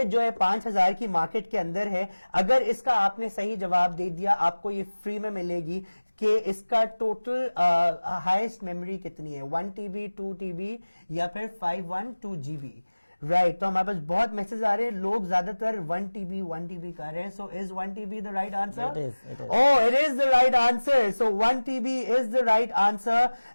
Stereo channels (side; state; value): both; inverted; correlation -1.00